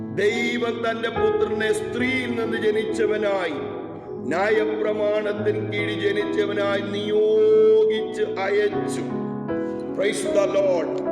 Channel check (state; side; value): identical; both; correlation 1.00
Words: ദൈവം തന്റെ പുത്രനെ സ്ത്രീയിൽ നിന്ന് ജനിച്ചവനായി ന്യായപ്രമാണത്തിന് കീഴിൽ ജനിച്ചവനായി നിയോഗിച്ച് അയച്ചു. Price the Lord.